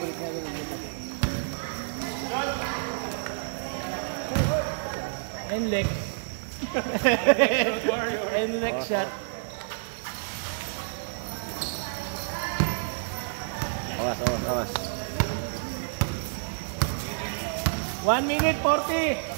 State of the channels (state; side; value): silent; left; digital silence